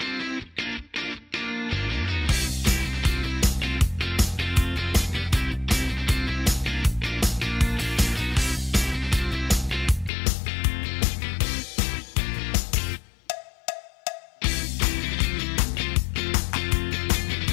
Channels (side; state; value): right; drops out; at 10.1 s